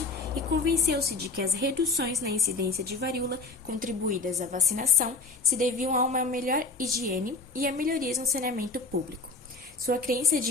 e convenceu-se de que as reduções na incidência de varíola contribuídas à vacinação se deviam a uma melhor higiene e a melhorias no saneamento público. Sua crença de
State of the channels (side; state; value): right; quieter; 3.7 dB